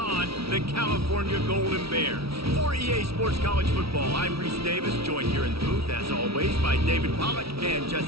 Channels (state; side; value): late; left; 0.76 ms